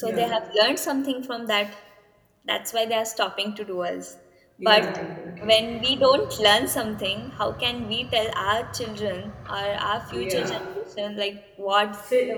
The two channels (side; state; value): both; identical; correlation 1.00